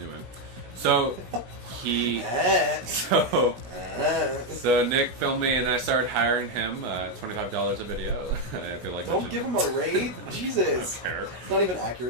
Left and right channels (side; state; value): left; late; 17 ms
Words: So so Nick filmed me and I started hiring him, $25 a video. I feel like Don't give him a rate. Jesus. I don't care. It's not even